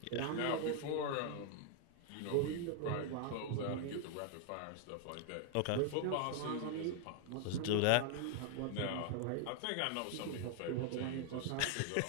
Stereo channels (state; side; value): different; both; correlation 0.00